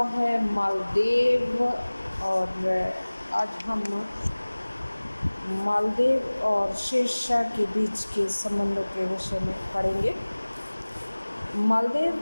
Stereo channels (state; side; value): inverted; both; correlation -1.00